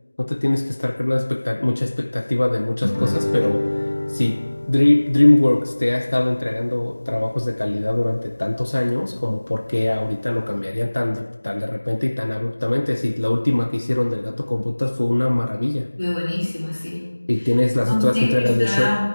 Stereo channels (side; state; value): both; inverted; correlation -1.00